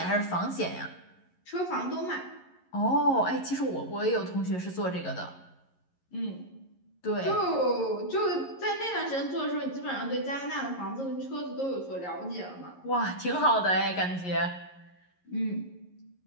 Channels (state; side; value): late; right; 11 ms